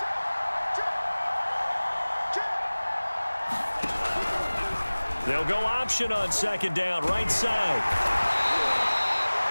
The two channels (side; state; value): both; inverted; correlation -1.00